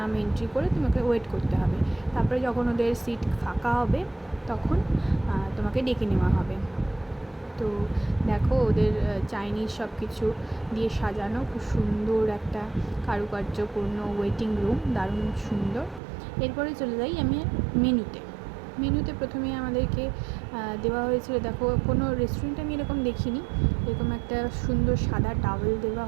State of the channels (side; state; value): left; drops out; at 16.0 s